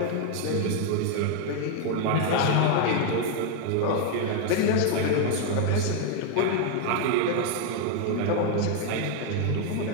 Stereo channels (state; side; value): different; both; correlation 0.01